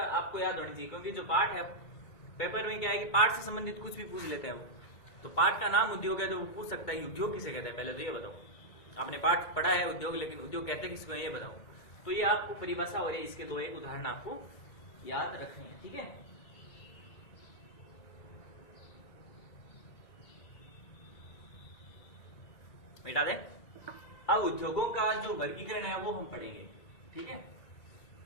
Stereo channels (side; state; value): right; late; 1.9 ms